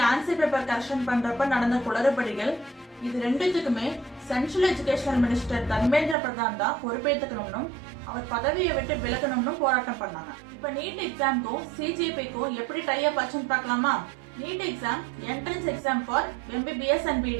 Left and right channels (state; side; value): drops out; left; at 6.2 s